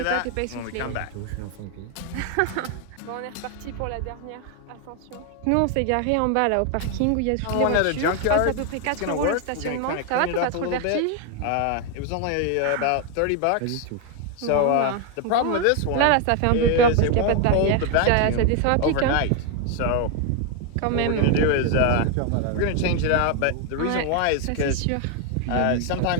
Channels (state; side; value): different; both; correlation 0.01